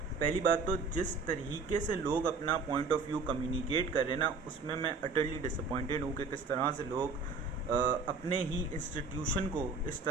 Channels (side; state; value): left; quieter; 4.3 dB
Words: बात तो जिस तरीके से लोग अपना पॉइंट ऑफ व्यू कम्युनिकेट कर रहे हैं ना, उसमें मैं अटरली डिसअपॉइंटेड हूँ कि किस तरह से लोग अपने ही इंस्टीट्यूशन को इस